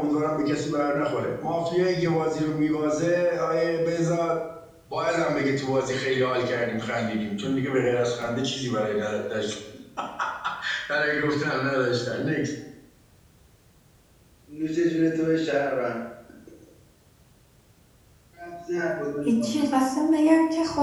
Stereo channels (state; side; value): identical; both; correlation 1.00